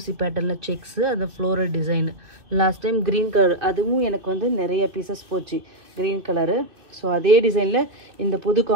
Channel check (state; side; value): late; left; 2.7 ms